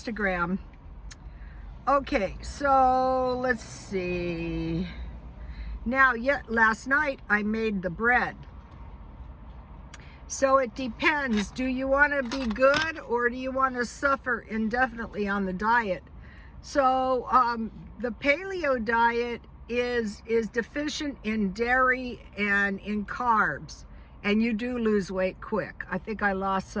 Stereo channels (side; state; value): both; identical; correlation 1.00